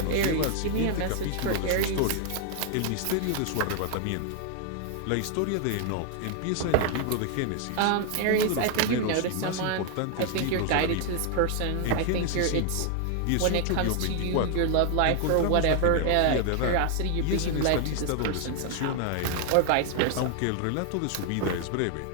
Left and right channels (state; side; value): different; both; correlation 0.00